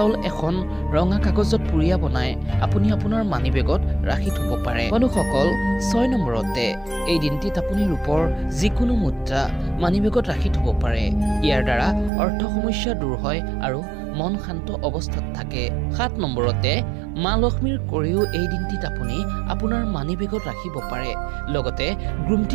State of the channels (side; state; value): left; drops out; at 12.1 s